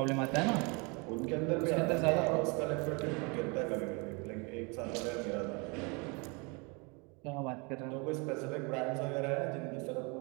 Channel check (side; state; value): left; quieter; 30.4 dB